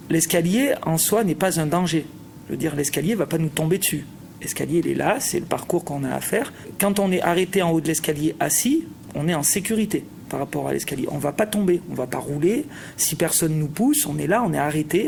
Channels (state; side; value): identical; both; correlation 1.00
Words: L'escalier, en soi, n'est pas un danger. Je veux dire, l'escalier ne va pas nous tomber dessus. L'escalier, il est là, c'est le parcours qu'on a à faire. Quand on est arrêté en haut de l'escalier assis, on est en sécurité par rapport à l'escalier. On ne va pas tomber, on ne va pas rouler. Si personne nous pousse, on est là, on est arrêté,